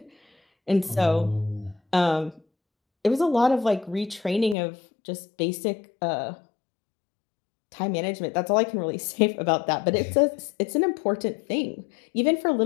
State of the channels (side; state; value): right; drops out; at 4.5 s